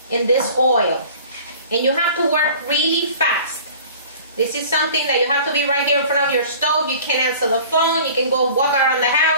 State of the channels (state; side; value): inverted; both; correlation -0.45